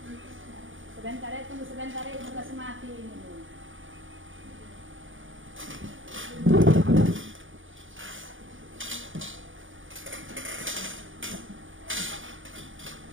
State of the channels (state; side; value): late; left; 0.57 ms